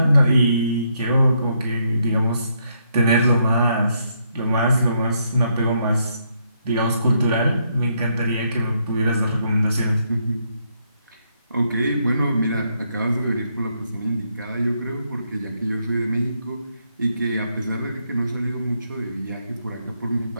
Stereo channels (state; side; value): inverted; both; correlation -0.75